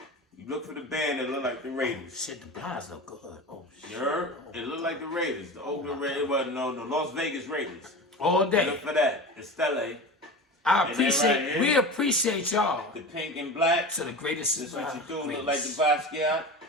you look for the band that look like the Raiders. Shit, the blinds look good. Oh, shit. You heard? It look like the Raiders. The Oakland Raiders. Well, no, the Las Vegas Raiders. All Look day. for that. The Stella, I And then appreciate, right here. we appreciate y'all the pink and black. to the greatest. This what you do. Look greatest. like the Basquiat.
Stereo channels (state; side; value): normal; both; correlation 0.30